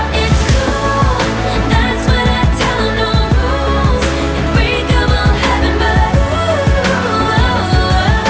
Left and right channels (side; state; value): both; identical; correlation 1.00